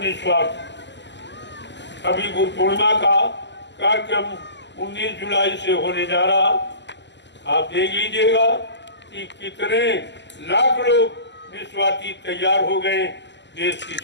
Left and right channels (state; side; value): late; right; 0.51 ms